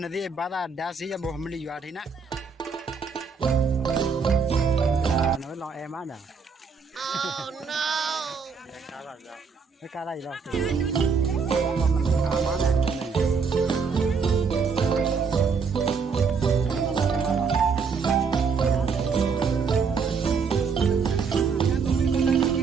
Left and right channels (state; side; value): quieter; left; 5.4 dB